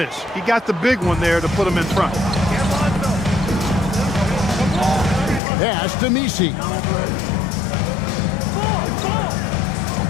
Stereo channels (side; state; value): right; drops out; at 5.4 s